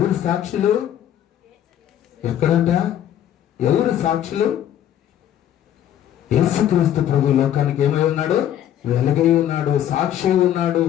సాక్షులు? ఎక్కడంట? ఎవరు సాక్షులు? యేసుక్రీస్తు ప్రభు లోకానికి ఏమై ఉన్నాడు? వెలుగై ఉన్నాడు, సాక్షి ఉన్నాడు.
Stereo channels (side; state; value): right; quieter; 11.0 dB